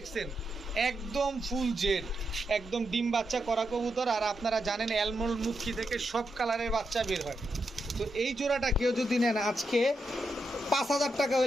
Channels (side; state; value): both; normal; correlation 0.84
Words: একদম ফুল জেড, একদম ডিম বাচ্চা করা কবুতর। আর আপনারা জানেন অ্যালমন্ড মুখী থেকে সব কালারের বাচ্চা বের হয়। তো এই জোড়াটা কেউ যদি নেন আজকে 5000 টাকা